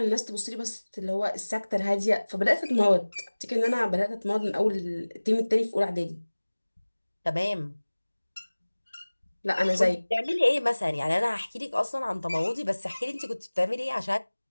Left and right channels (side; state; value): both; inverted; correlation -1.00